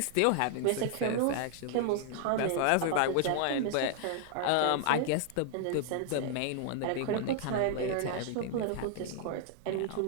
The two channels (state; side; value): different; both; correlation 0.00